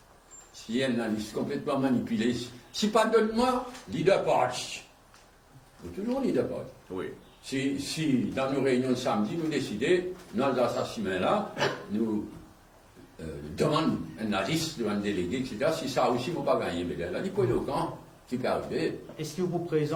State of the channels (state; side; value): identical; both; correlation 1.00